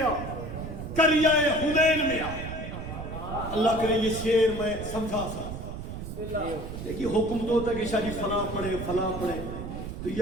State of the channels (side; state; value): right; noise; rumble, 8 dB below the sound